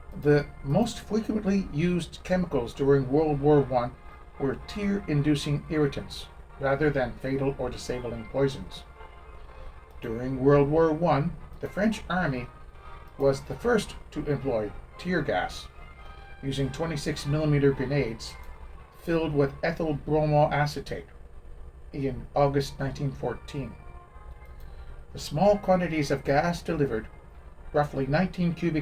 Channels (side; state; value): both; identical; correlation 1.00